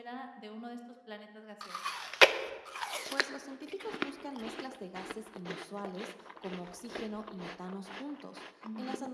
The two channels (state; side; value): identical; both; correlation 1.00